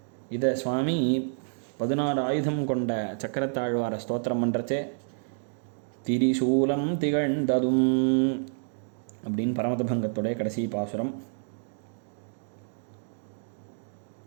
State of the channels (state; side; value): silent; left; digital silence